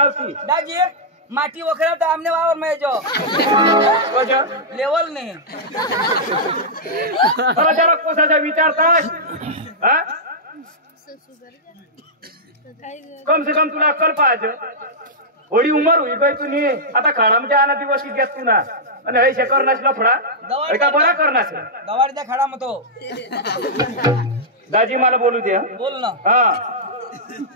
दाजी माटी वखरा तर आमने वावर में जो लेवल नहीं मला जरा कोसाचा विचारतास हा कम से कम तुला अक्कल पाहिजे थोडी उमर होई गई तुनी आता खाडामध्ये आना दिवस की घेत तू ना आणि हे करणास लफडा एका बरा करणास गवार द्या खडा मतो दाजी मला बोलू दे बोल ना हा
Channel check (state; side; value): normal; both; correlation -0.10